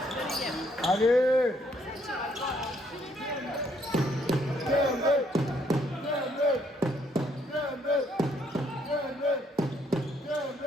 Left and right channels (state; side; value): normal; both; correlation 0.69